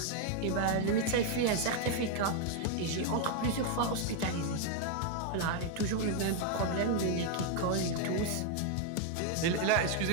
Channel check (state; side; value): different; both; correlation 0.01